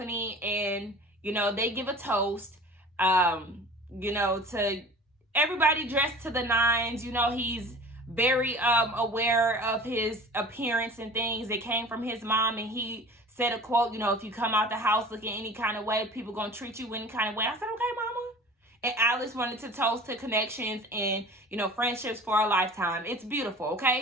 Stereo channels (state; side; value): normal; both; correlation 0.41